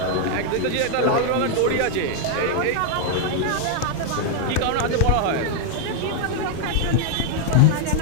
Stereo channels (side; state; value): both; different; correlation 0.00